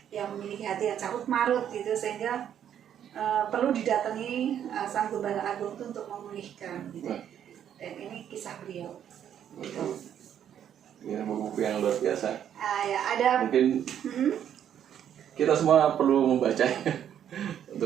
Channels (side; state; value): left; quieter; 9.6 dB